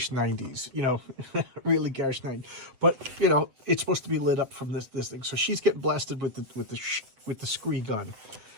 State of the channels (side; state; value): left; late; 7.9 ms